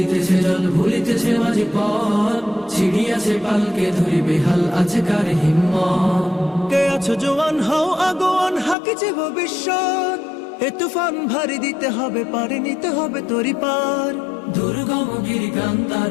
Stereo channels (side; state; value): right; drops out; at 8.8 s